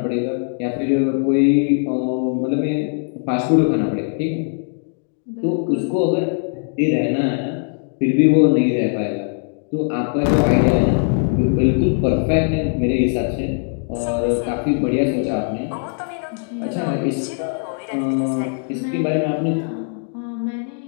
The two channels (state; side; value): silent; right; 59 dB below the other